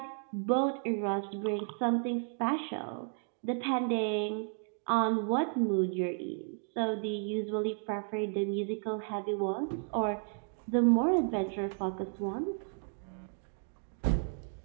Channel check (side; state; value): left; silent; 56 dB below the other